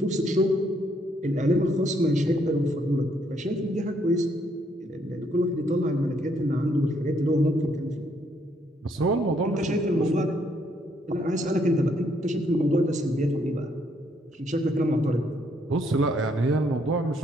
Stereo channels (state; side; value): normal; both; correlation 0.71